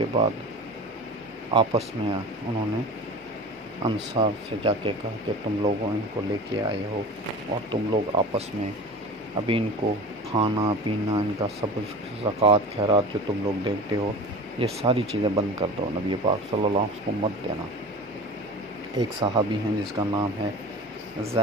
بعد آپس میں انہوں نے انصار سے جا کے کہا کہ تم لوگوں ان کو لے کے آئے ہو اور تم لوگ آپس میں ابھی ان کو کھانا پینا ان کا سب زکوٰۃ خیرات جو تم لوگ دیتے ہو یہ ساری چیزیں بند کر دو. نبی پاک صلی اللہ علیہ وسلم کو مت دینا. ایک صحابی ہیں جس کا نام ہے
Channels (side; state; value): both; normal; correlation 0.35